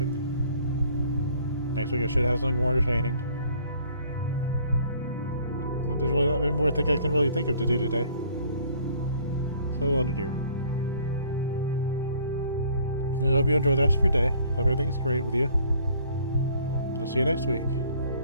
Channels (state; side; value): inverted; both; correlation -0.58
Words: Next week I should have something more entertaining. Well, there's really not many more things I can really think of to do today. So we'll end it here. I hope you enjoy the rest of your day. Hope everything's great with you. And I'll see you next week.